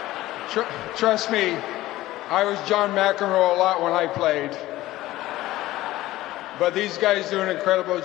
Trust me, I was John McEnroe a lot when I played. But these guys do an incredible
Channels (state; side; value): quieter; right; 16.4 dB